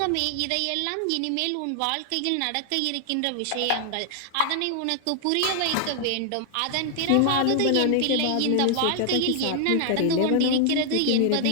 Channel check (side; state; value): both; different; correlation 0.00